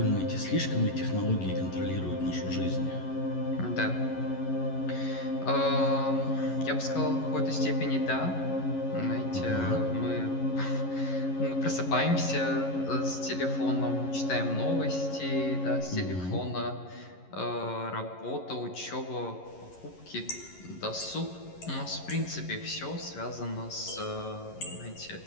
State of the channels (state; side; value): late; right; 11 ms